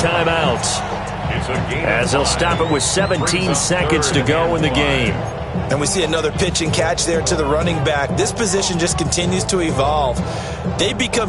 as they'll stop it with 17 seconds to go in the game. And we see another pitch and catch there to the running back. This position just continues to evolve. They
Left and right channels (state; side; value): identical; both; correlation 1.00